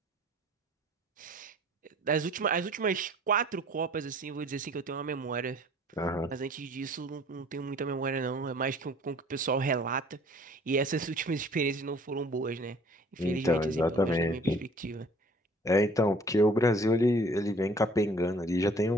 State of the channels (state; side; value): normal; both; correlation 0.53